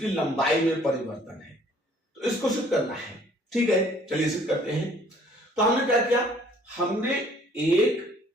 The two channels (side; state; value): both; normal; correlation 0.58